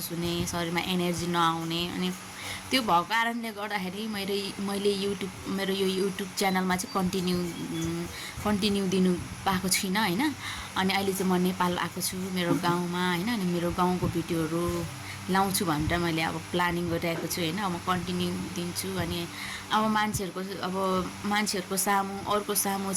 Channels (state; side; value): identical; both; correlation 1.00